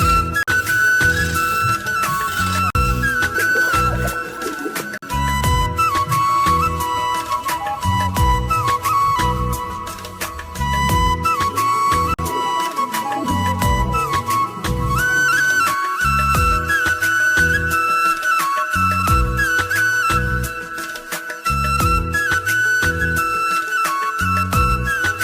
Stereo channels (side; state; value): both; identical; correlation 1.00